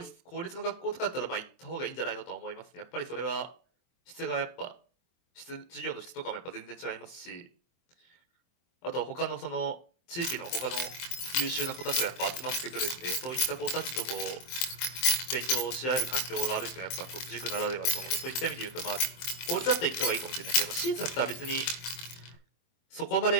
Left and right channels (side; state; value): right; late; 23 ms